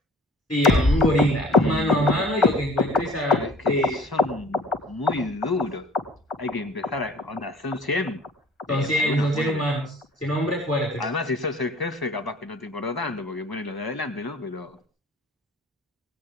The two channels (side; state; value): both; normal; correlation 0.50